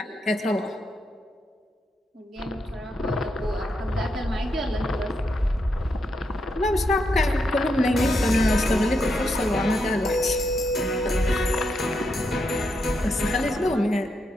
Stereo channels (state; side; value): normal; both; correlation 0.82